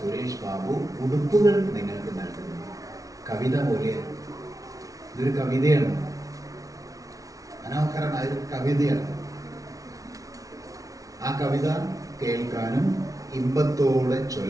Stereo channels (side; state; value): left; late; 0.17 ms